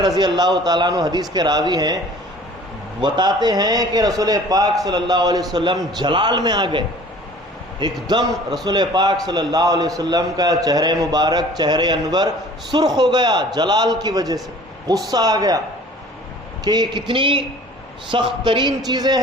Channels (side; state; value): both; normal; correlation 0.48